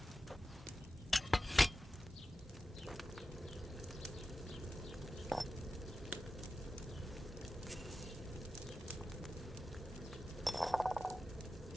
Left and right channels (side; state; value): both; normal; correlation 0.93